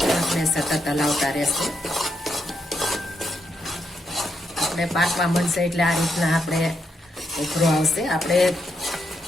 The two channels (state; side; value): normal; both; correlation 0.80